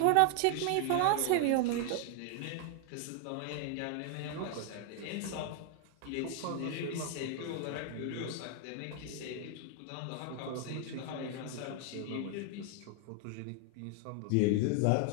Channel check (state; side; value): different; both; correlation 0.00